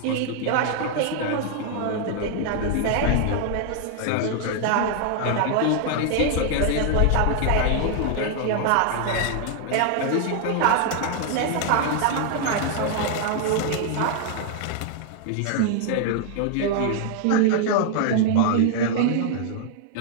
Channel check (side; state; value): both; different; correlation 0.00